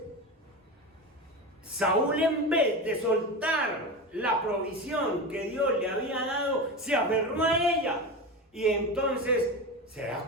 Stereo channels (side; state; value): both; normal; correlation 0.23